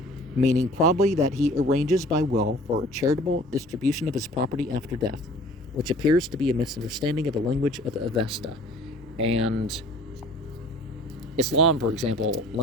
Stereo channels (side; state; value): both; normal; correlation 0.49